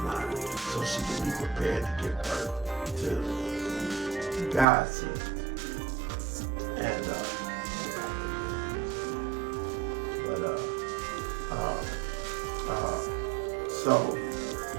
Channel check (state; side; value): drops out; left; at 4.7 s